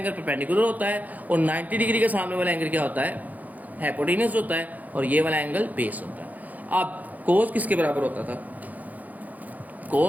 परपेंडिकुलर होता है और 90 डिग्री के सामने वाला एंगल क्या होता है, हाइपोटेन्यूस होता है, और ये वाला एंगल बेस होता है। अब कोस किसके बराबर होता था,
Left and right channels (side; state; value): left; late; 0.080 ms